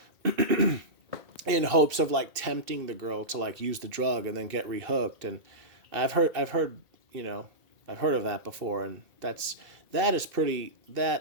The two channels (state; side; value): late; left; 2.7 ms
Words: in hopes of like tempting the girl to like use the drug and then get rehooked. And I've heard I've heard of that before, and that is pretty